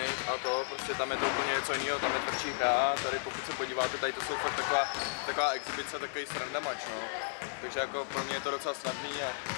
a to, prostě tam je to úplně něco jiného, tam je tvrdší hra, tady pokud se podíváte, tady to jsou fakt taková exibice, takový srandamač, no. Takže jako pro mě je to docela snadný a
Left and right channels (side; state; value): right; silent; digital silence